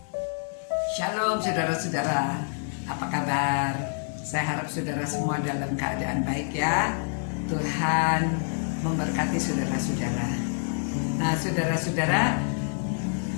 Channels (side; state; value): right; silent; 60 dB below the other